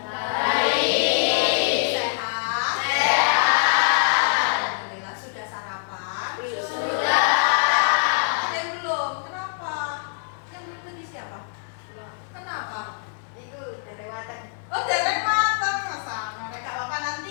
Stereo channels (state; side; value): silent; right; digital silence